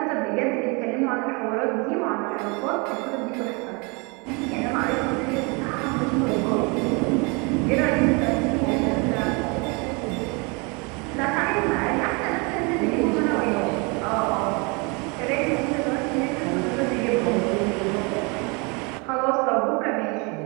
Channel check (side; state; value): left; quieter; 30.3 dB